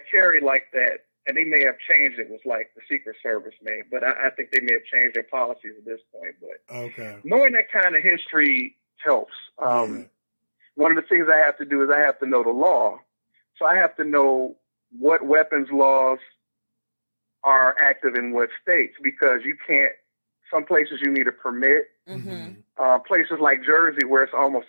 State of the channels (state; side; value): inverted; both; correlation -1.00